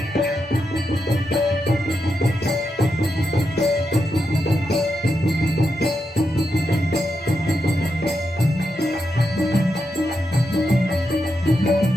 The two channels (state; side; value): normal; both; correlation 0.85